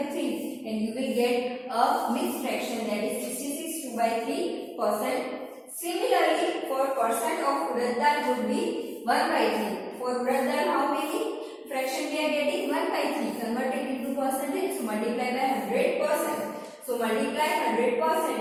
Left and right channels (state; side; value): identical; both; correlation 1.00